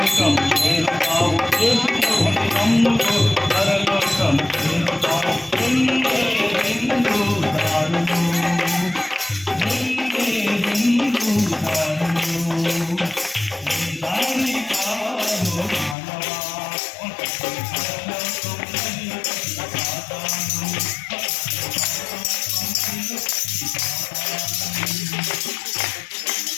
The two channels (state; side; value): drops out; right; at 16.0 s